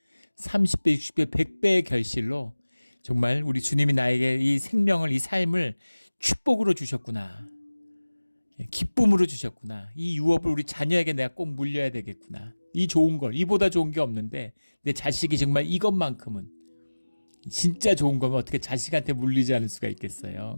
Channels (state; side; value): inverted; both; correlation -1.00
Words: 30배, 60배, 100배의 결실로 정말 우리 주님이 나에게 이 생명을, 이 삶을 축복으로 주셨구나, 기쁨으로 주셨구나, 이 유업을 우리 자녀에게 내가 꼭 물려야 되겠구나, 이 좋은 걸, 이보다 좋은 게 없는데 내 자식이 정말 이것만큼은, 진짜 좋은 거면 어떻게 자식한테 물리지 않을 수가